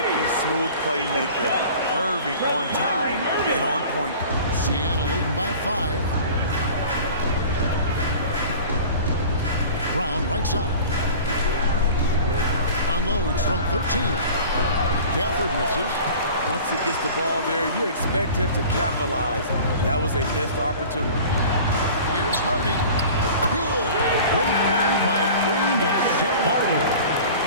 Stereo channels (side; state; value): both; inverted; correlation -0.41